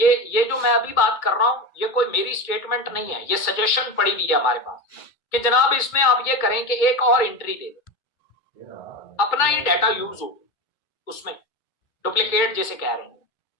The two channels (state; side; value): late; right; 2.2 ms